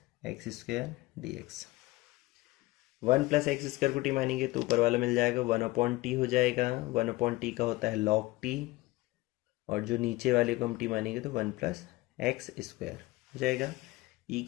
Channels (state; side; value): quieter; right; 20.0 dB